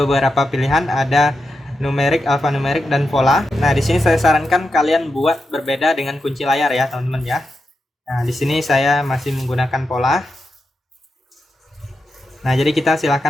pilihan, ada numerik, alfanumerik, dan pola. Nah di sini saya sarankan kalian buat berbeda dengan kunci layar ya teman-teman ya. Nah di sini saya masih menggunakan pola. Nah jadi kita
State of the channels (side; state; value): both; normal; correlation 0.88